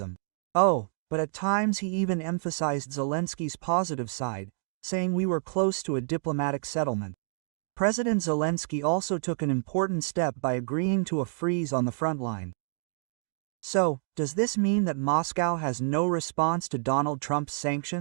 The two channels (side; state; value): left; silent; 59 dB below the other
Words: Oh, but at times he even emphasized Zelensky's positive side, saying we were close to a diplomatic settlement. President Zelensky also took an important step by agreeing to a freeze on the front line. So, does this mean that Moscow has no response to Donald Trump's